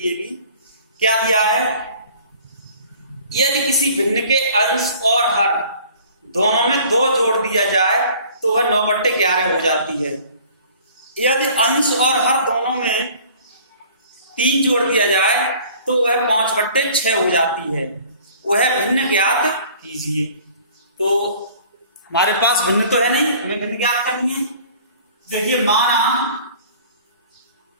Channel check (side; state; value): both; inverted; correlation -0.50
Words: भी। क्या दिया है, यदि किसी भिन्न के अंश और हर दोनों में 2 जोड़ दिया जाए तो वह 9/11 हो जाती है। यदि अंश और हर दोनों में 3 जोड़ दिया जाए तो वह 5/6 हो जाती है। वह भिन्न ज्ञात कीजिए। तो हमारे पास भिन्न तो है नहीं, हमें भिन्न ज्ञात करनी है। देखिए माना